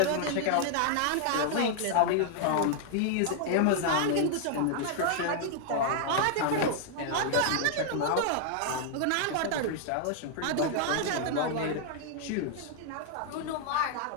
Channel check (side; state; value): both; different; correlation 0.00